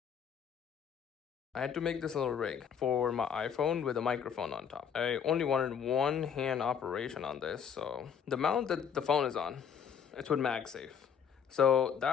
I had to make this little rig for my iPhone with a microphone on top. I only wanted one hand operation on this, so the mount that the phone is on, it's with MagSafe. So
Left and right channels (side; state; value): right; quieter; 7.6 dB